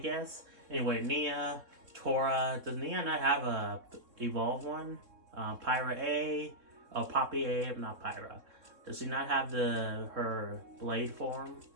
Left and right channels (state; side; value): late; left; 3.6 ms